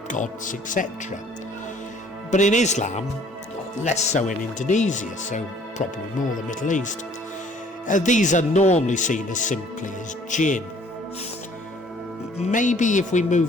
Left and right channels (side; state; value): both; normal; correlation 0.56